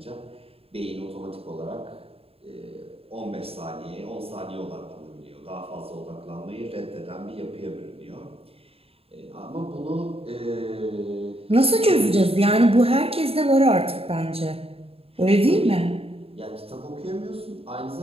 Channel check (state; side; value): late; left; 0.28 ms